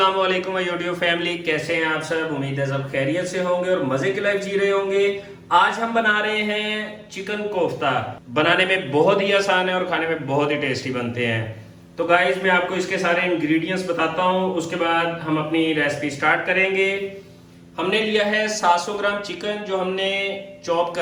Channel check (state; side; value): identical; both; correlation 1.00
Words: वालेकुम यूट्यूब फैमिली, कैसे हैं आप सब। उम्मीद है सब खैरियत से होंगे और मजे की लाइफ जी रहे होंगे। आज हम बना रहे हैं चिकन कोफ्ता। बनाने में बहुत ही आसान है और खाने में बहुत ही टेस्टी बनते हैं। तो गाइस मैं आपको इसके सारे इंग्रेडिएंट्स बताता हूँ, उसके बाद हम अपनी रेसिपी स्टार्ट करेंगे। हमने लिया है 700 ग्राम चिकन, जो हमने चॉप